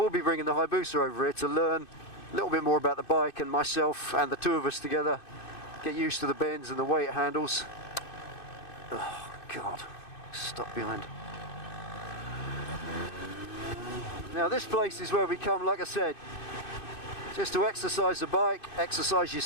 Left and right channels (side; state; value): right; late; 2.6 ms